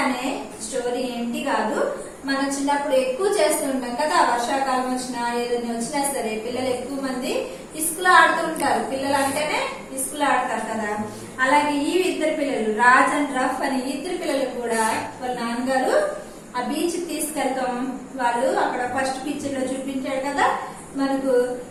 అనే స్టోరీ ఏంటి కాదు, మనం చిన్నప్పుడు ఎక్కువ చేస్తూ ఉంటాం కదా. వర్షాకాలం వచ్చినా ఏదైనా వచ్చినా సరే పిల్లలు ఎక్కువ మంది ఇసుకలో ఆడుతూ ఉంటారు. పిల్లలు అంటేనే ఇసుకలో ఆడతారు కదా. అలాగే ఈ ఇద్దరు పిల్లలు రాజ్ అండ్ రఫ్ అని ఇద్దరు పిల్లలు కూడా వాళ్ళ నాన్నగారు ఆ బీచ్ తీసుకెళ్తాం. వాళ్ళు అక్కడ ఫస్ట్ పిక్చర్ లో చూపించాడు కదా మనకు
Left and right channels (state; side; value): identical; both; correlation 1.00